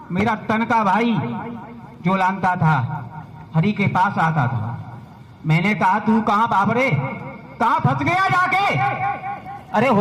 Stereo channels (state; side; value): identical; both; correlation 1.00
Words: मेरा तन का भाई जो लानता था हरि के पास आता था, मैंने कहा तू कहां बाबरे, कहां फंस गया जाके, अरे